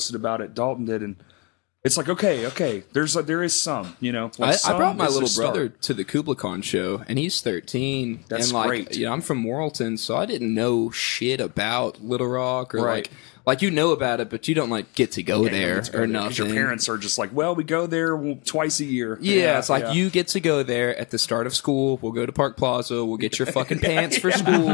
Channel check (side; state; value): right; quieter; 30.4 dB